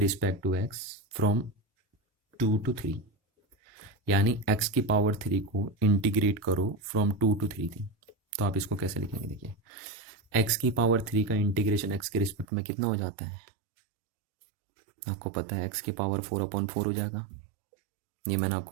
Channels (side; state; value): left; drops out; at 12.5 s